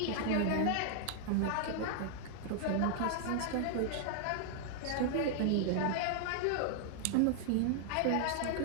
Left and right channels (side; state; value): both; different; correlation 0.00